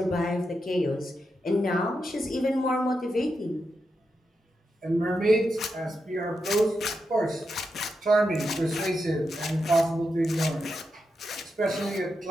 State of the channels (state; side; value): normal; both; correlation 0.86